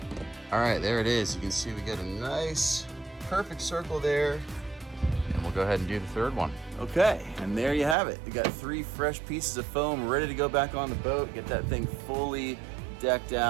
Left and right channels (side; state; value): left; drops out; at 8.0 s